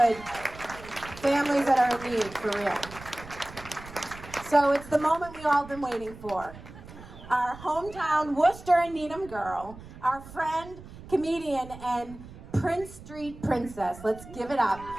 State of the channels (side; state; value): right; noise; rumble, 16 dB below the sound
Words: good families that are in need, for real. So it's the moment we all been waiting for. Our hometown Worcester and Needham girl, our friend, comedian, and Prince Street princess. Let's give it up